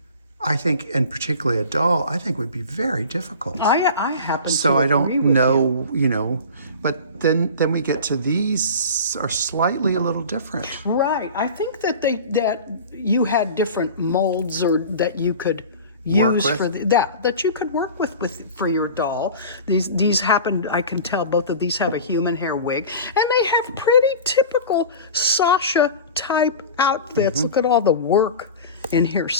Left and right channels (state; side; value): inverted; both; correlation -0.35